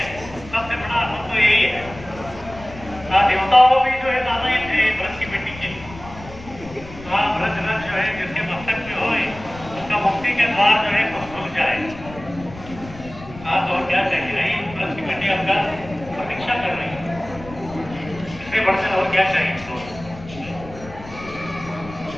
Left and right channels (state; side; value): noise; left; rumble, 16 dB below the sound